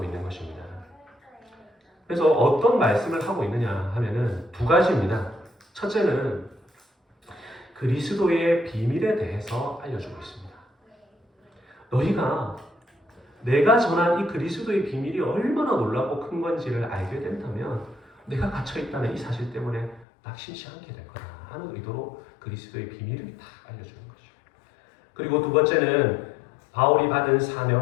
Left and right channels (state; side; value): drops out; right; at 20.1 s